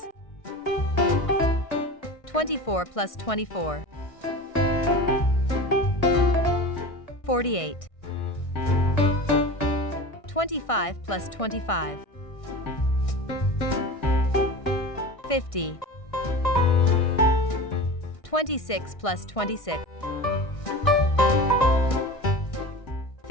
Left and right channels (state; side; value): late; right; 1.6 ms